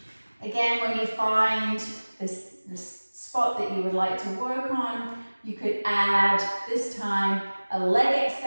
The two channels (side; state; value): both; inverted; correlation -1.00